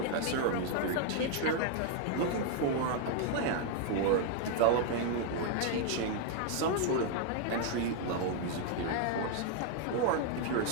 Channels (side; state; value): both; different; correlation 0.00